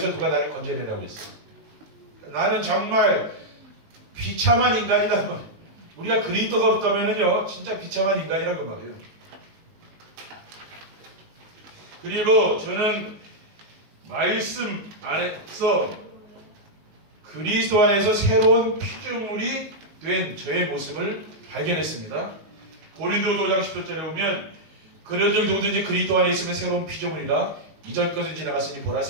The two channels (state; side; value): late; left; 19 ms